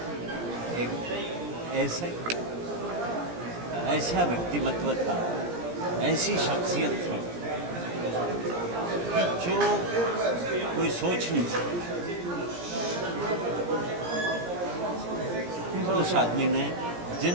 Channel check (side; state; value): left; late; 17 ms